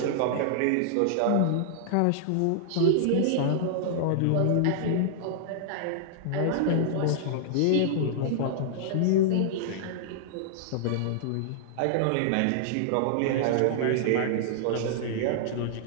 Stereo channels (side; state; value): both; different; correlation -0.01